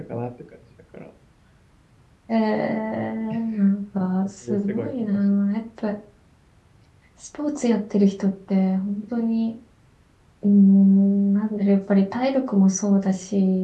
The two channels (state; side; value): identical; both; correlation 1.00